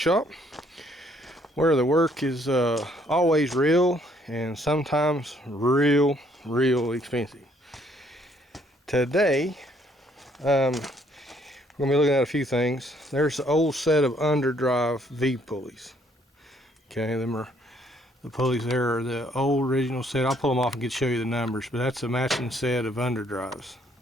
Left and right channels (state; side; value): normal; both; correlation 0.66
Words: where the work is always real and sometimes real expensive. Today, we're going to be looking at a few things. There's the old set of underdrive V pulleys. Okay, them are the pulleys there are the old original set. I'll pull them off and show you the numbers, but that's a matching set of underdrives.